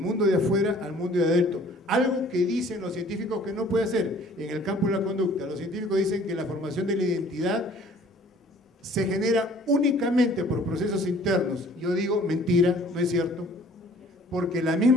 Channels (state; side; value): normal; both; correlation 0.54